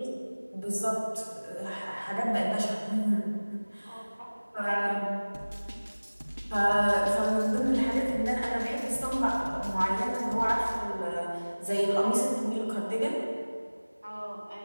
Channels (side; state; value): both; inverted; correlation -1.00